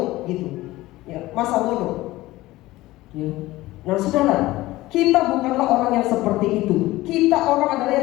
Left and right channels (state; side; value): quieter; right; 17.9 dB